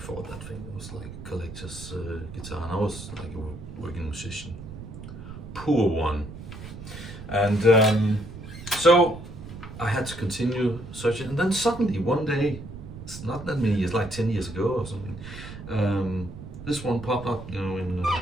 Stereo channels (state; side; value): noise; right; rumble, 12 dB below the sound